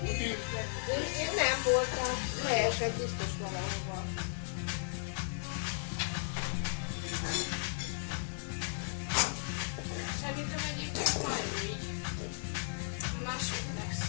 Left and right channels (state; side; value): silent; right; digital silence